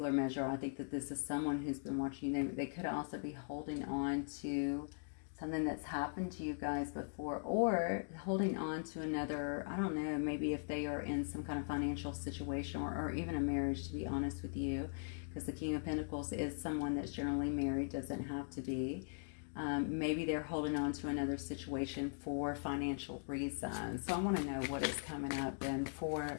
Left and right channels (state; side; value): silent; right; digital silence